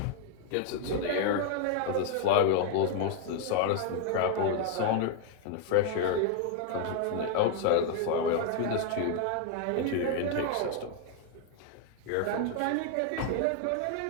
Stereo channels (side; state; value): both; different; correlation 0.00